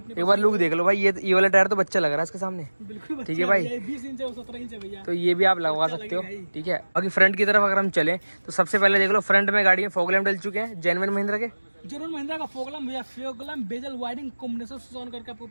एक बार लुक देख लो भाई, ये वाला टायर तो बच्चा लग रहा है इसके सामने, पास बिल्कुल ठीक है भाई। 20 इंच है, 17 इंच है भैया, तो ये भी आप लगवा सकते हो, ठीक है। बाकी फ्रंट की तरफ अगर हम चलें तो सबसे पहले देख लो, फ्रंट में गाड़ी में फॉग लैम्प डल चुके हैं जेन्युइन महिंद्रा के। जेनुअन महिंद्रा का फोगलम भैया, फोगलम बेजल वायरिंग कॉम्बिनेशन से ऑन करके आपको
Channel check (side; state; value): both; inverted; correlation -1.00